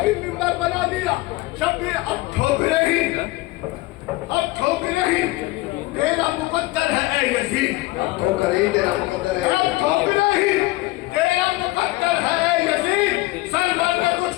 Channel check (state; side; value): quieter; right; 20.1 dB